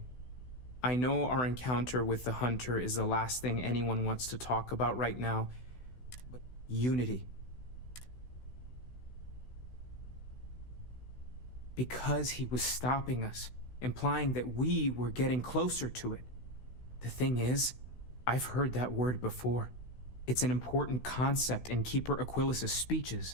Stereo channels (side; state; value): right; late; 16 ms